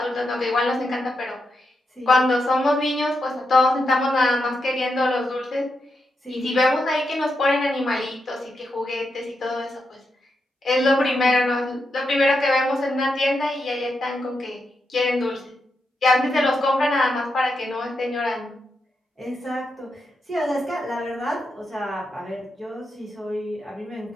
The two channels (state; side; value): normal; both; correlation 0.85